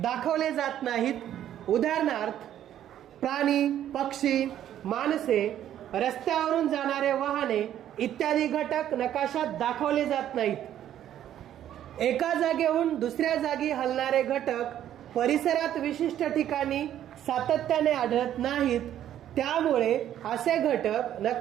दाखवले जात नाहीत. उदाहरणार्थ, प्राणी, पक्षी, माणसे, रस्त्यावरून जाणारे वाहने इत्यादी घटक नकाशात दाखवले जात नाहीत. एका जागेहून दुसऱ्या जागी हलणारे घटक परिसरात विशिष्ट ठिकाणी सातत्याने आढळत नाहीत, त्यामुळे असे घटक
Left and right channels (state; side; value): quieter; left; 11.2 dB